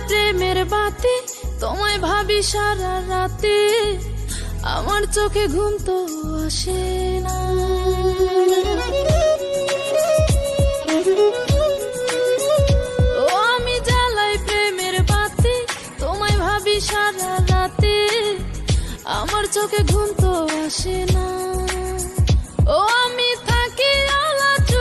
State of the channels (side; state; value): both; identical; correlation 1.00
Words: প্রেমের বাতি তোমায় ভাবি সারা রাতে, আমার চোখে ঘুম তো আসে না। ও আমি জ্বালাই প্রেমের বাতি তোমায় ভাবি সারা রাতে, আমার চোখে ঘুম তো আসে না। ও আমি থাকি আলা